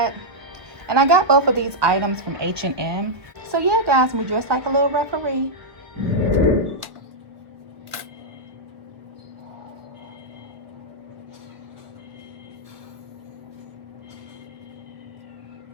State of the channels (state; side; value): late; left; 1.2 ms